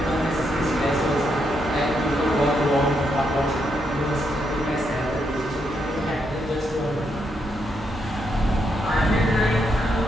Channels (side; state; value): both; normal; correlation 0.79